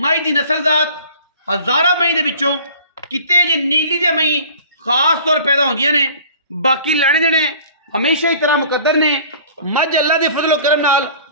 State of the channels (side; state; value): both; inverted; correlation -0.46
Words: दी नस्लजात हज़ारा मई दे विचों किते जे नीली दे मई खास तौर पैदा होंदियां ने। बाकी लैने देने हमेशा ही तरह मुकद्दर ने। मज अल्लाह दे फजलो करम नाल